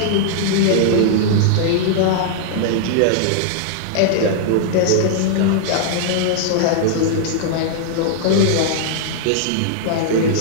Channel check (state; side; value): different; both; correlation -0.01